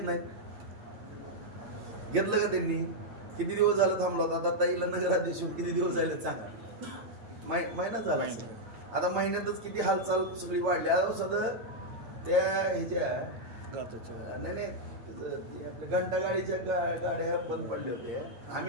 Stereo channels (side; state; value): left; late; 8.9 ms